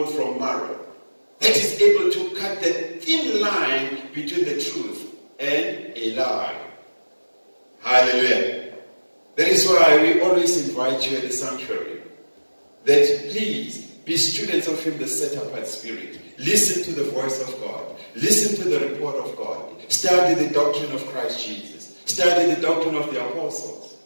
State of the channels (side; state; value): both; inverted; correlation -1.00